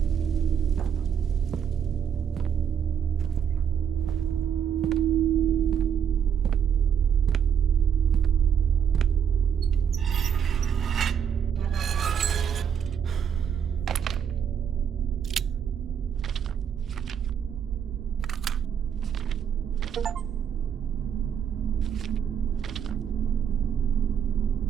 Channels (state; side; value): quieter; left; 8.1 dB